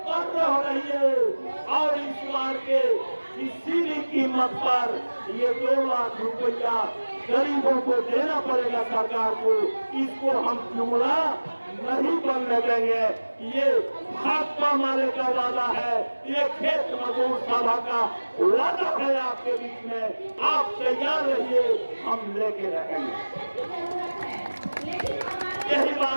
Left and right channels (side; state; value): both; inverted; correlation -1.00